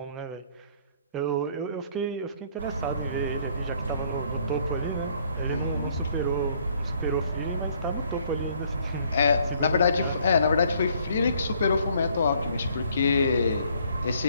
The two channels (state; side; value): inverted; both; correlation -0.63